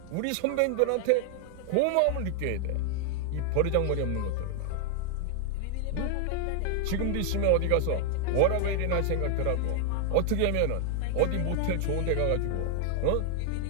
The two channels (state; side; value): different; both; correlation 0.00